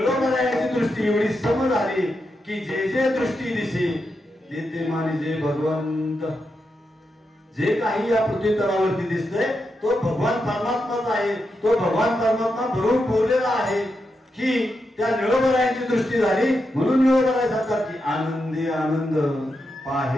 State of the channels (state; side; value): normal; both; correlation 0.86